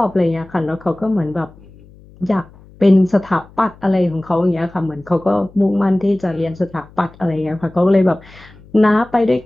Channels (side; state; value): left; noise; hum, 24 dB below the sound